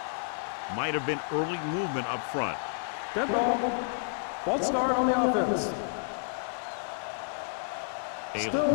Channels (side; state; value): right; silent; digital silence